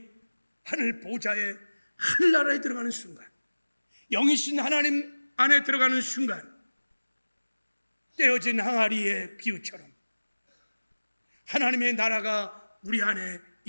하늘 보좌에 하늘나라에 들어가는 순간, 영이신 하나님 안에 들어가는 순간 떼어진 항아리의 비유처럼 하나님의 나라가 우리 안에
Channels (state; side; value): inverted; both; correlation -1.00